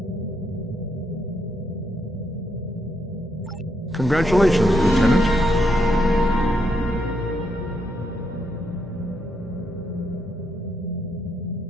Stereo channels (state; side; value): normal; both; correlation 0.78